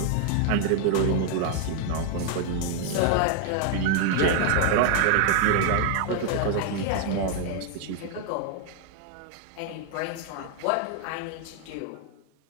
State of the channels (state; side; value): different; both; correlation 0.00